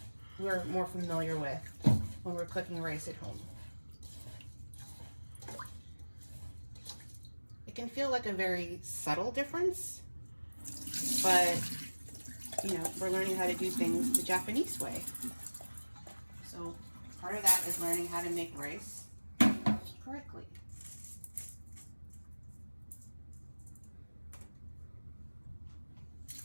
we're more familiar with when we're cooking rice at home. It can feel like a very subtle difference, but we're learning how to do things the Japanese way. So part of that is learning how to make rice correctly.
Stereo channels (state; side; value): inverted; both; correlation -1.00